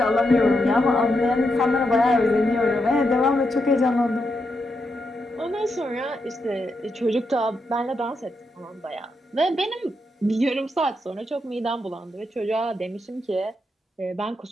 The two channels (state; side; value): normal; both; correlation 0.83